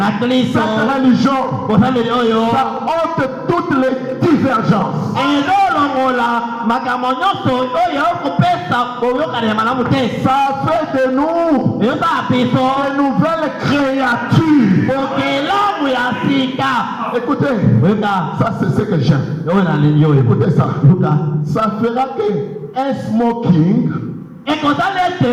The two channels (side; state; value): both; identical; correlation 1.00